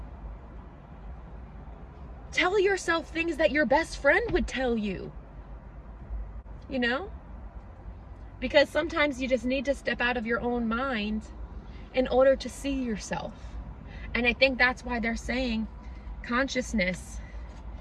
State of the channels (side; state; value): both; identical; correlation 1.00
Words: Tell yourself things that your best friend would tell you. You know? Because sometimes you just need to step out of your own mind in order to see yourself. And I think that's why they're saying consciousness